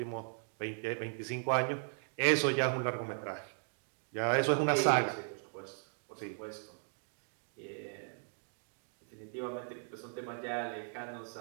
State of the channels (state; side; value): silent; left; 53 dB below the other